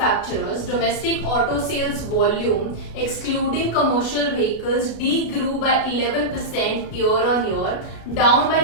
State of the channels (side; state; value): right; late; 33 ms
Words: domestic auto sales volume excluding commercial vehicles degrew by 11% year on year, down by